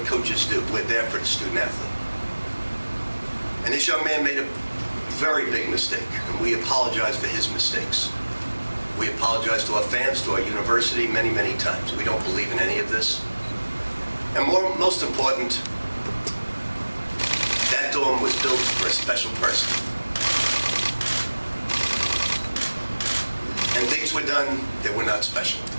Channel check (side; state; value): both; inverted; correlation -1.00